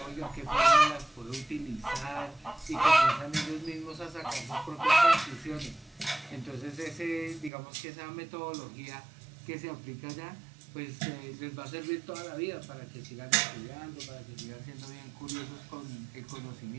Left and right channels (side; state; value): left; drops out; at 7.5 s